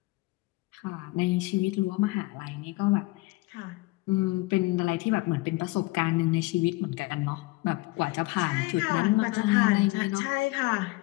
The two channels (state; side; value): quieter; right; 21.9 dB